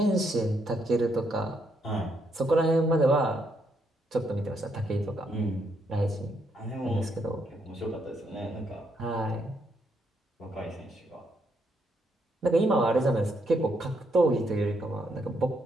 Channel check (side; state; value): both; normal; correlation 0.76